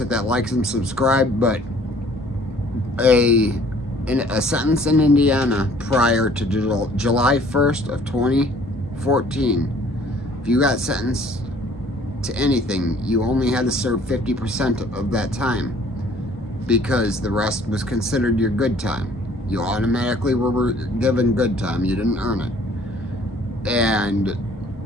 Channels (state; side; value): normal; both; correlation 0.56